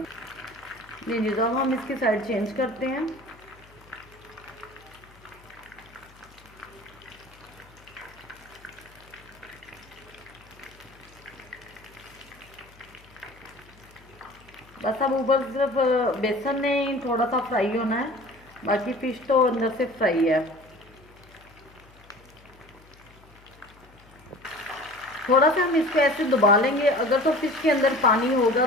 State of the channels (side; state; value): left; noise; hum, 25 dB below the sound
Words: जी तो अब हम इसकी साइड चेंज करते हैं। बस अब ऊपर सिर्फ बेसन ने थोड़ा सा फ्राई होना है, बाकी फ़िश तो अंदर से फ्राई है। थोड़ा सा हम इसको ऐसे दबा लेंगे, अगर तो फ़िश के अंदर पानी होगा